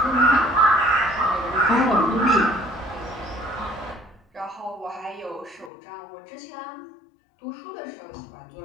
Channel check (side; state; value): right; drops out; at 5.7 s